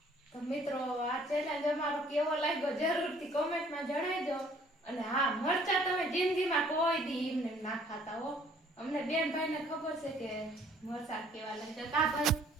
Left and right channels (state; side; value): normal; both; correlation 0.58